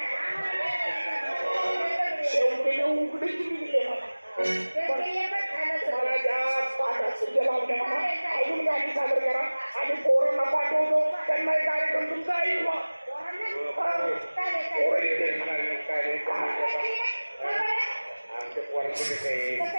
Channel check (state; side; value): inverted; both; correlation -1.00